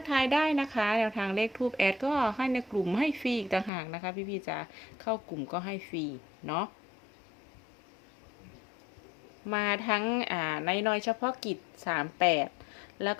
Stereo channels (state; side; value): drops out; right; at 3.7 s